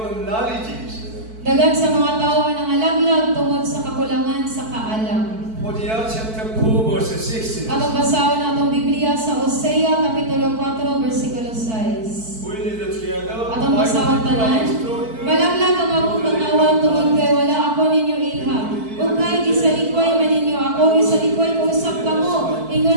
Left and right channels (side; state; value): left; late; 4.5 ms